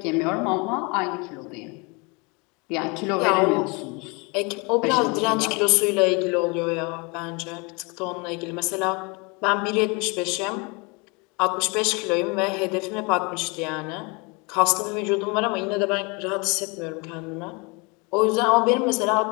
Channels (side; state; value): right; quieter; 29.4 dB